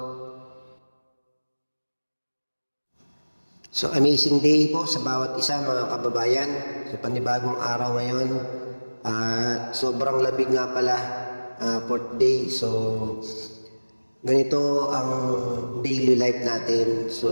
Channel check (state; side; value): inverted; both; correlation -1.00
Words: So amazing day po sa bawat isa mga kababayan sa panibagong araw ngayon. At sobrang labig nga pala, 4th day. So ganito ang daily life natin. So